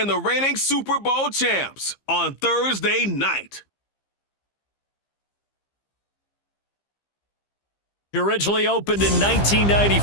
the reigning Super Bowl champs on Thursday night. Originally opened in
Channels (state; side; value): late; right; 15 ms